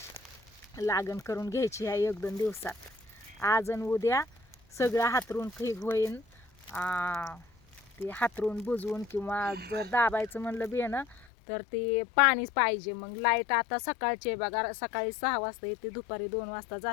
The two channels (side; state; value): right; drops out; at 11.2 s